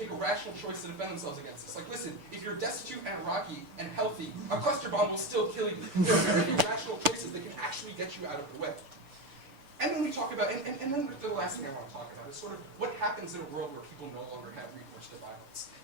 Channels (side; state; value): left; late; 6.9 ms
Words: a rational choice to defend themselves against this. Like, listen, if you're destitute and Iraqi and healthy, a cluster bomb will still kill you. There are very few rational choices that can actually get you out of the way. And then we talk about, and then the last thing I want to talk about is sort of what happens in a world where people no longer have recourse to violence.